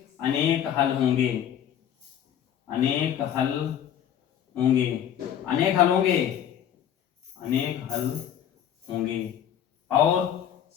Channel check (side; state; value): right; quieter; 9.9 dB